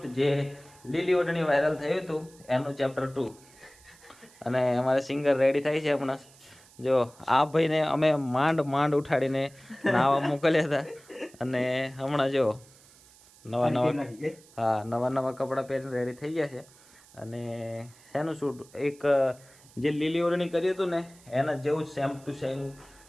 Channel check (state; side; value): noise; right; hiss, 25 dB below the sound